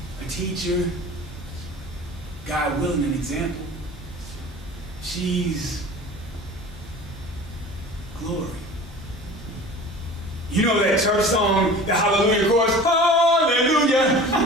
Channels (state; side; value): normal; both; correlation 0.40